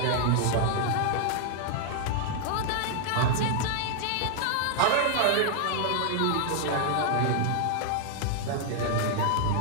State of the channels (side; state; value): both; different; correlation 0.00